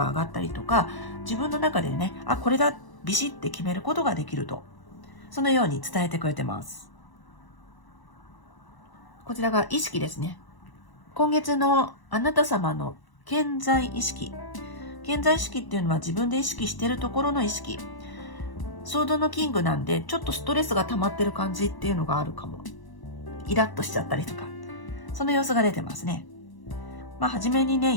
上がったりとか、自分の中でね、これだ、ビシッて決めることができると。そのように伝えてくれてます。こちらが意識ですね。今月のあなた様の健在意識。健在意識っていうのは自分で意識しているところの意識。ソードのキングなんで、ちょっとストレスが溜まってる感じっていうのがあるかも。イラッとしちゃったりとか。その様子が出てますね。初めにね、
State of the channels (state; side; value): late; right; 1.0 ms